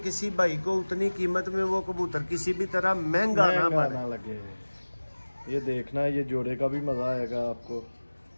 भाई को उतनी कीमत में वो कबूतर किसी भी तरह महंगा ना लगे। ये देखना, ये जोड़े का भी मज़ा आएगा आपको।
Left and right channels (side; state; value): both; inverted; correlation -1.00